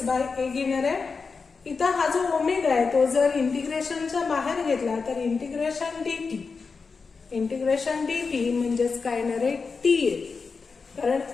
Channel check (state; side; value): quieter; right; 4.8 dB